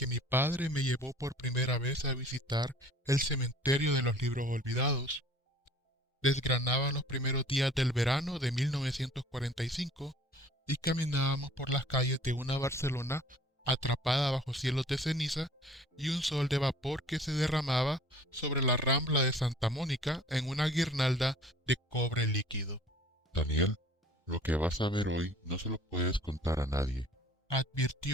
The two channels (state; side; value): normal; both; correlation 0.51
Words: mi padre me llevó por primera vez a visitar el cementerio de los libros olvidados. Desgranaban los primeros días del verano de 1945 y caminábamos por las calles de una Barcelona atrapada bajo cielos de ceniza y un sol de vapor que se derramaba sobre la rambla de Santa Mónica en una guirnalda de cobre líquido. Daniel, lo que vas a ver hoy no se lo puedes contar a nadie,